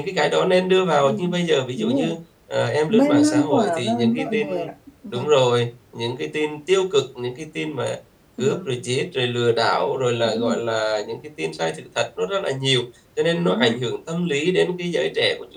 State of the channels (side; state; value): both; identical; correlation 1.00